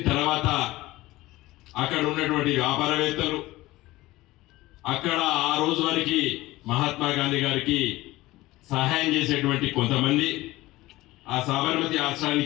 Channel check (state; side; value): quieter; right; 18.3 dB